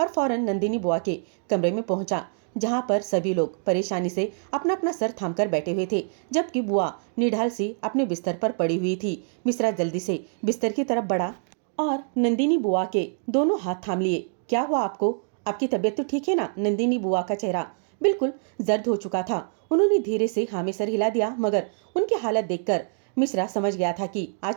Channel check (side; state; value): left; silent; 61 dB below the other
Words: और फौरन नंदिनी बुआ के कमरे में पहुंचा, जहां पर सभी लोग परेशानी से अपना अपना सर थामकर बैठे हुए थे, जबकि बुआ निढाल सी अपने बिस्तर पर पड़ी हुई थी। मिश्रा जल्दी से बिस्तर की तरफ बढ़ा और नंदिनी बुआ के दोनों हाथ थाम लिए। क्या हुआ आपको? आपकी तबीयत तो ठीक है ना? नंदिनी बुआ का चेहरा बिल्कुल जर्द हो चुका था। उन्होंने धीरे से हाँ में सर हिला दिया, मगर उनकी हालत देखकर मिश्रा समझ गया था कि